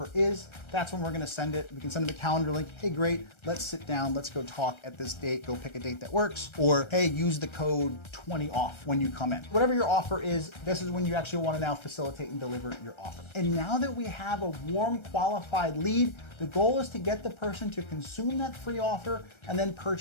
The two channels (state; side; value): late; right; 1.3 ms